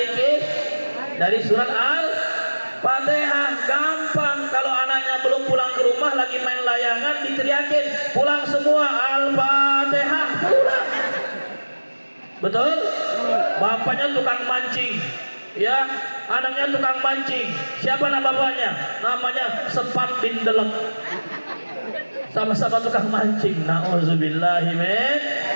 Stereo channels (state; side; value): inverted; both; correlation -1.00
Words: Dari surat Al-Fatihah. Gampang. Kalau anaknya belum pulang ke rumah lagi main layangan, diteriakin pulang semua, Al-Fatihah pulang. Betul? Bapaknya tukang mancing, ya anaknya tukang mancing. Siapa nama bapaknya? Namanya Sepat bin Delek. Sama-sama tukang mancing. Nauzubillahi min.